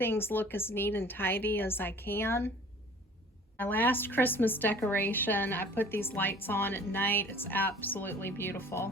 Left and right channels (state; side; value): normal; both; correlation 0.48